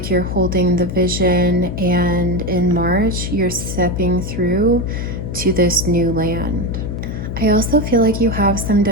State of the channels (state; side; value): noise; left; hum, 4 dB below the sound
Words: you're holding the vision, and in March, you're stepping through to this new land. I also feel like you have some